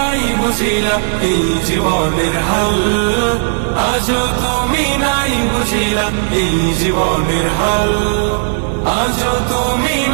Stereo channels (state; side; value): silent; left; digital silence